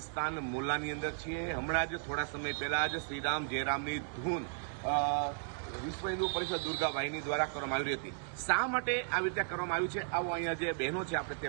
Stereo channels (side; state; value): left; silent; digital silence